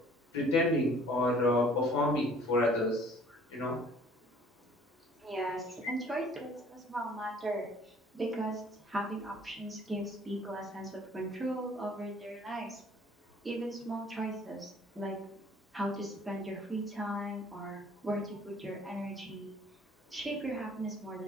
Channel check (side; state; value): both; normal; correlation 0.55